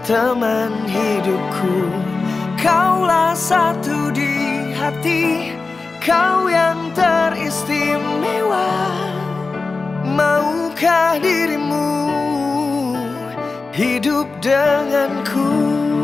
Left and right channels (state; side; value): quieter; right; 4.0 dB